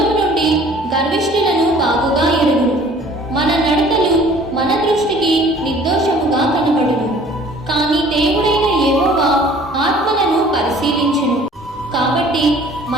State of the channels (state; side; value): normal; both; correlation 0.52